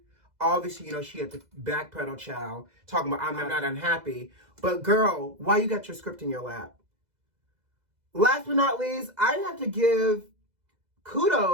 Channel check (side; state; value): left; late; 2.0 ms